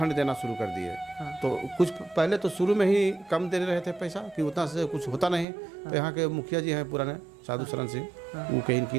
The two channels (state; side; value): drops out; left; at 5.5 s